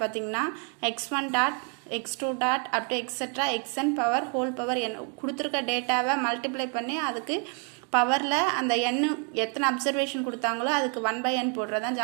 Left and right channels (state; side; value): quieter; left; 39.6 dB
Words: பார்த்தீங்கன்னா x1 dot x2 dot up to etcetera xn power whole power n கொடுத்துருக்க டேட்டாவை மல்டிப்ளை பண்ணி அதுக்கு பவரில் அந்த n எத்தனை அப்சர்வேஷன் கொடுத்தாங்களோ அதுக்கு 1/n போடுறது தான்